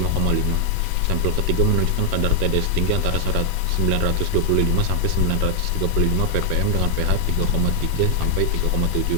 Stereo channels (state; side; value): different; both; correlation 0.00